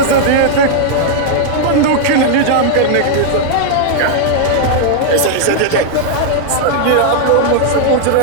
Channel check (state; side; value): different; both; correlation -0.01